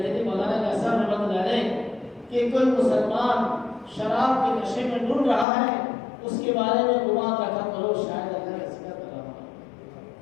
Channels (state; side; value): drops out; right; at 5.5 s